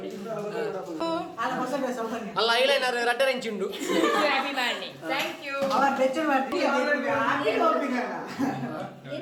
ಅಲ್ಲ ಐಲೈನರ್ ರಡ್ಡರೆಂಚುಂಡು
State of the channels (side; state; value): both; identical; correlation 1.00